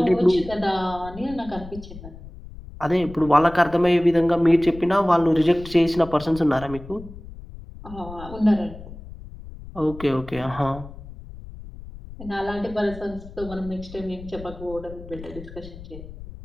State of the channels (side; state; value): left; noise; rumble, 15 dB below the sound